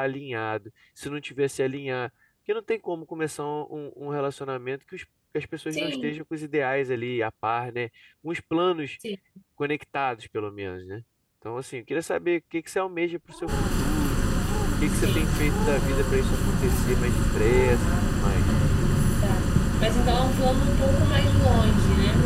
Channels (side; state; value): both; identical; correlation 1.00